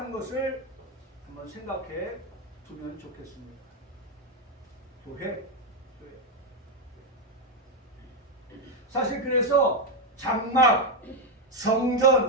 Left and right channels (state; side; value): normal; both; correlation 0.04